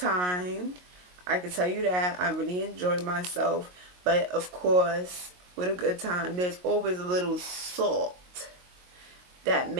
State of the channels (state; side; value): late; left; 22 ms